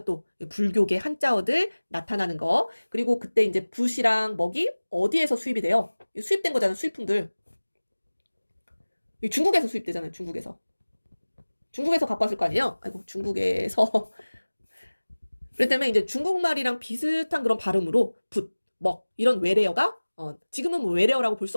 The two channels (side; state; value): both; inverted; correlation -1.00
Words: 또 불교계 한자어들 나타나는 거. 그리고 그때 이제 붓이랑 먹이 어디에서 수입이 돼요? 수입된 거잖아요. 수입품들. 중국에서 수입되잖아요. 중국에서 갖고 왔을 거 아니에요? 아이고 중국에서. 그렇기 때문에 이제 중국말이랑 비슷한 그런 발음으로 붓, 먹 이런 외래어가 지금은 뭐 외래어라고 볼 수